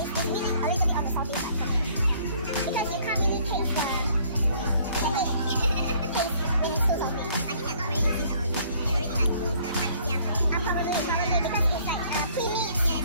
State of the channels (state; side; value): inverted; both; correlation -0.60